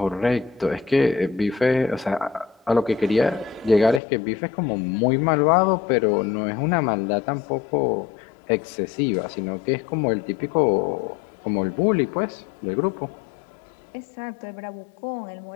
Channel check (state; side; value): drops out; right; at 4.0 s